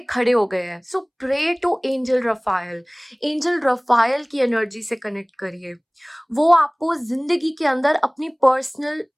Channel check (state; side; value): identical; both; correlation 1.00